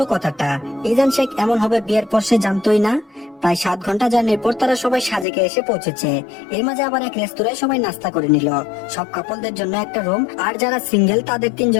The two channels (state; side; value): drops out; right; at 5.2 s